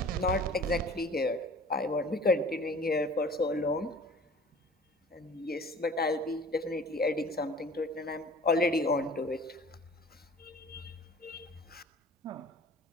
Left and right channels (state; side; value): normal; both; correlation 0.46